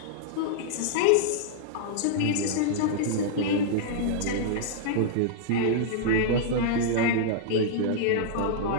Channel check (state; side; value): different; both; correlation -0.01